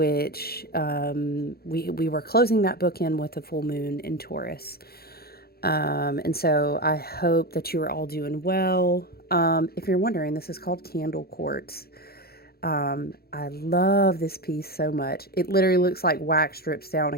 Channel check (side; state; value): right; late; 0.45 ms